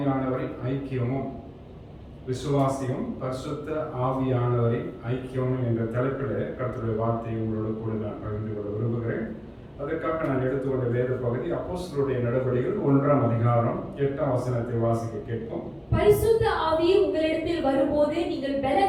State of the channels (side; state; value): both; identical; correlation 1.00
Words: ஐக்கியமும் பரிசுத்த ஆவியானவரின் ஐக்கியமும் என்ற தலைப்பில் கர்த்தருடைய வார்த்தையை உங்களோட கூட நான் பகிர்ந்து கொள்ள விரும்புகிறேன். அதற்காக நான் எடுத்துக்கொண்ட வேத பகுதி அப்போஸ்தலருடைய நடவடிக்கைகள் 1ஆம் அதிகாரம் 8ஆம் வசனத்தை வாசிக்க கேட்போம். பரிசுத்த ஆவி உங்களிடத்தில் வரும்போது நீங்கள்